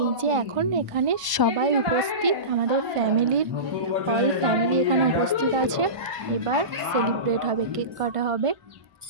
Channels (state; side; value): late; left; 1.0 ms